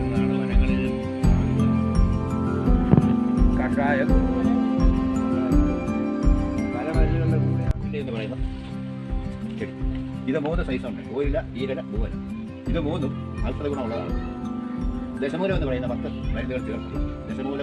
വനങ്ങളിൽ കഷായം പല മരുന്നുകളുടെ കൂടെ എന്ന് പറയുന്ന ചെടി. ഇത് 3 സൈസുണ്ട്: ഓയില, ഈരല, പൂവല. ഇത് 3ഉം ഔഷധ ഗുണമുള്ളതാണ്. ദശമൂലം എന്ന് പറയുന്ന 10 മരുന്നുകൾ ചേർത്ത് ദശമൂലം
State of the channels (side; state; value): both; identical; correlation 1.00